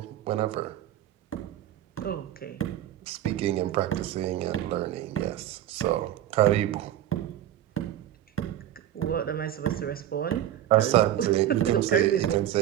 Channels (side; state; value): left; quieter; 12.0 dB